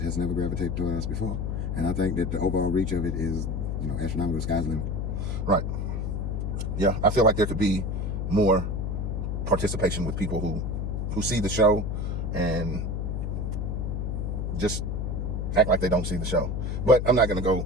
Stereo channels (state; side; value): noise; left; hum, 1 dB below the sound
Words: has never gravitated toward us before. And I think that the overall reach of it is, astronomical. Sky's the limit. Right. Yeah, I feel like there could be more participation with people who see the show and just act like they don't see the show. But I'm not going to go